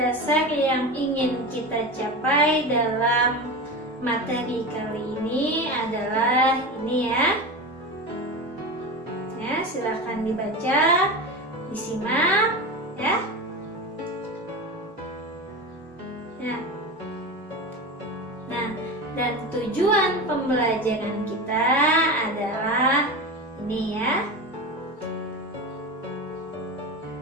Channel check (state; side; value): normal; both; correlation 0.25